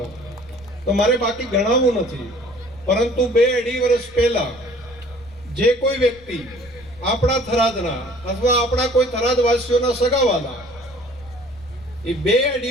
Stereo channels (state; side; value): noise; left; rumble, 23 dB below the sound